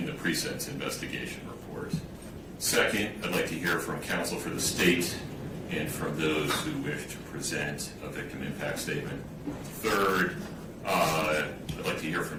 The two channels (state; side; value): identical; both; correlation 1.00